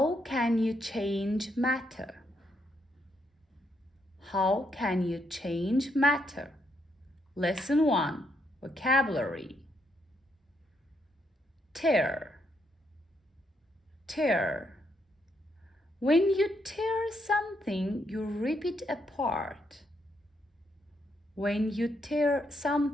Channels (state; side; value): normal; both; correlation 0.77